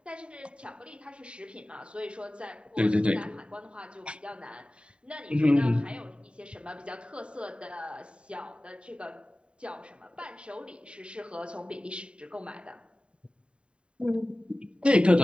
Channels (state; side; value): late; left; 0.055 ms